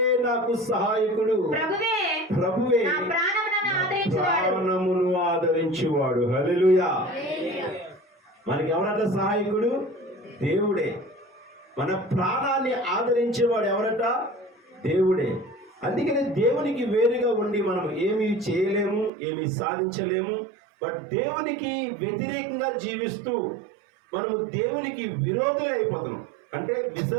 నాకు సహాయకుడు. ప్రభువే ప్రాణమును ఆదరించువాడు. హల్లెలూయా. మనకి ఎవరట సహాయకుడు? దేవుడే. మన ప్రాణాన్ని ఆదరించేవాడు ఎవరట? దేవుడే. అందుకని దేవునికి వేరుగా ఉండి మనం ఏమీ చేయలేము, ఏమీ సాధించలేము. బట్ దేవునికి వ్యతిరేకంగా జీవిస్తూ మనము దేవునికి విరోధులు అయిపోతున్నాం. అంటే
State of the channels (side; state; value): left; drops out; at 19.1 s